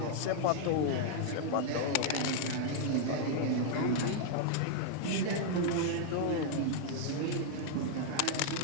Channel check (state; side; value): different; both; correlation -0.01